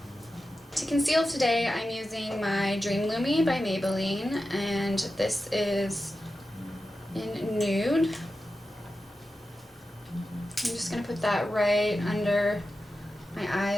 To conceal today, I'm using my Dream Lumi by Maybelline, and this is in Nude. I'm just going to put that right under my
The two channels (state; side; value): normal; both; correlation 0.92